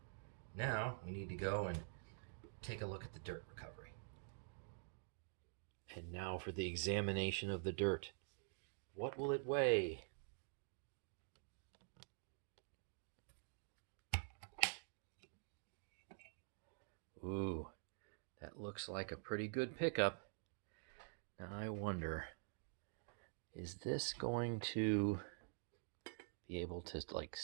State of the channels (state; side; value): silent; left; digital silence